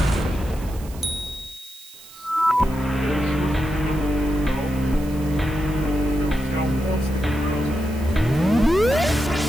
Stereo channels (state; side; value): noise; right; hiss, 20 dB below the sound